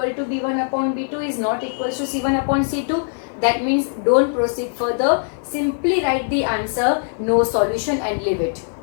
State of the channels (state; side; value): silent; right; 63 dB below the other